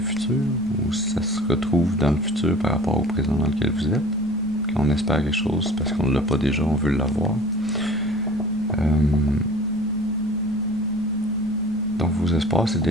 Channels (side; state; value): both; normal; correlation 0.45